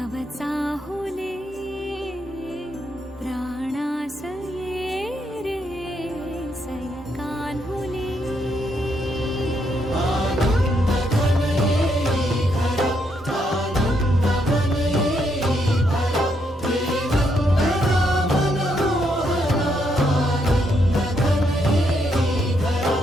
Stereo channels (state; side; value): normal; both; correlation 0.76